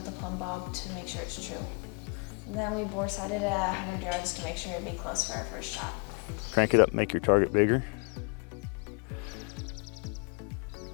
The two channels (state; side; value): quieter; right; 35.2 dB